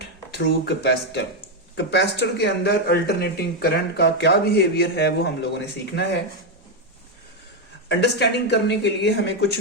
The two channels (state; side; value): normal; both; correlation 0.04